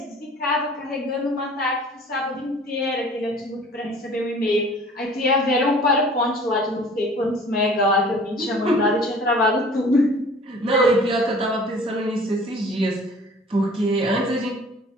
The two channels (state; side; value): normal; both; correlation 0.48